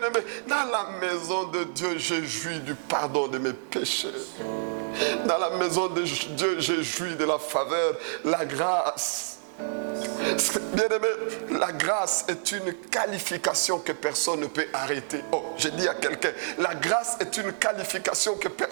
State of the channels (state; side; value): silent; left; digital silence